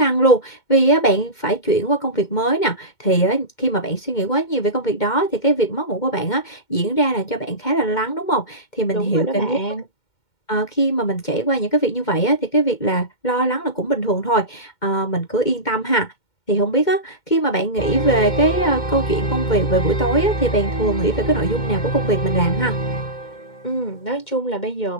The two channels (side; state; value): right; late; 2.2 ms